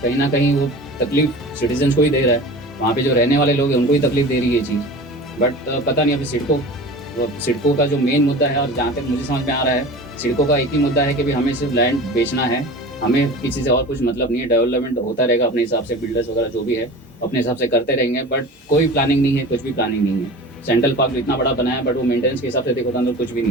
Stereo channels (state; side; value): normal; both; correlation 0.36